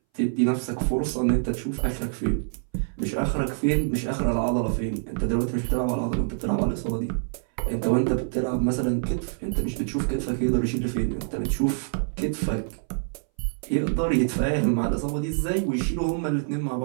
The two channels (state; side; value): silent; left; 60 dB below the other